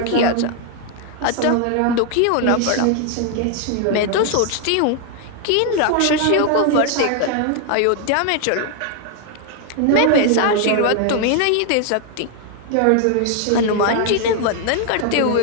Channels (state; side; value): different; both; correlation 0.00